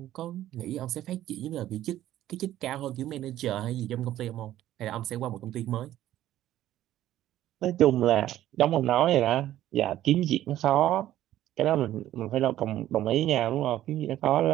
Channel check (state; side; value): quieter; left; 13.3 dB